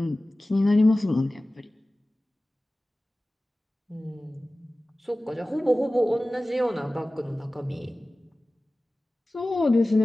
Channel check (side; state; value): both; normal; correlation 0.97